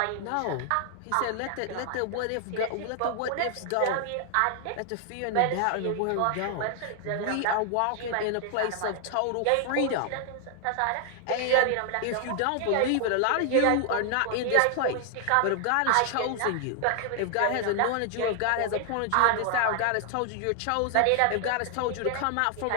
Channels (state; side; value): different; both; correlation 0.00